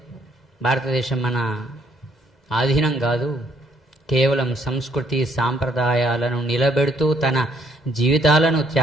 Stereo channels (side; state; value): both; normal; correlation 0.68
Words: భారతదేశం మన ఆధీనం కాదు, కేవలం సంస్కృతి సాంప్రదాయాలను నిలబెడుతూ తన జీవితాలను